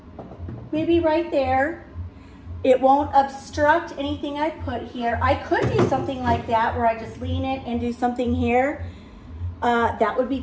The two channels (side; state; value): both; identical; correlation 1.00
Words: maybe right there. It won't obstruct anything I put here. I could do something like that where I just lean it and do something here. That would be